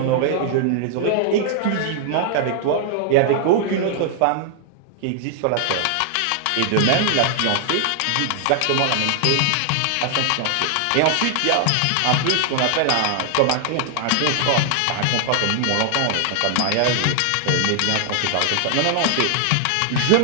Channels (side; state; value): both; different; correlation 0.00